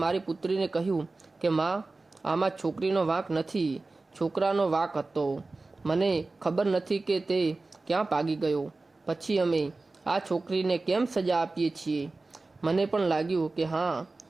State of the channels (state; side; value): quieter; left; 3.4 dB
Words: મારી પુત્રીને કહ્યું કે માં, આમાં છોકરીનો વાંક નથી, છોકરાનો વાંક હતો. મને ખબર નથી કે તે ક્યાં ભાગી ગયો. પછી અમે આ છોકરીને કેમ સજા આપીએ છીએ. મને પણ લાગ્યું કે હા,